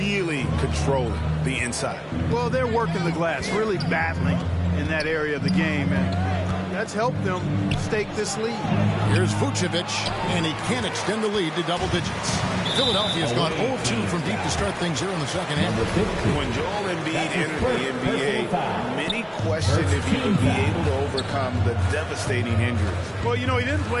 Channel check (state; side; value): identical; both; correlation 1.00